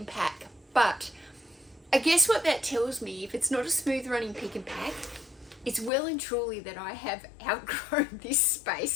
pack. But I guess what that tells me, if it's not a smooth running pick and pack, it's well and truly that I have outgrown this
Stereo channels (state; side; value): drops out; right; at 5.9 s